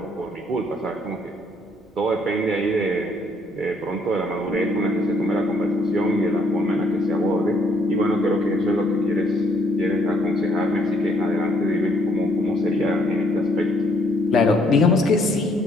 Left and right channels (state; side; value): normal; both; correlation 0.68